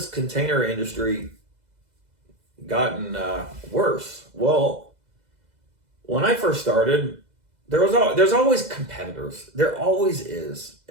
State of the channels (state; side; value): late; left; 2.0 ms